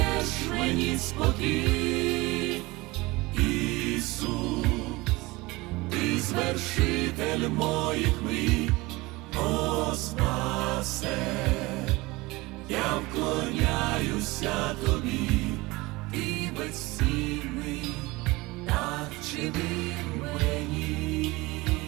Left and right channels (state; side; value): quieter; left; 22.1 dB